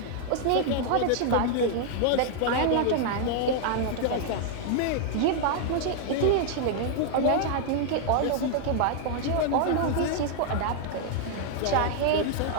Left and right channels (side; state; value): both; different; correlation 0.00